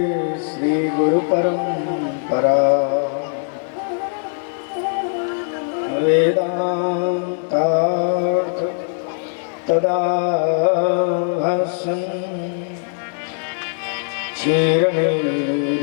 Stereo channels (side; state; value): right; silent; 65 dB below the other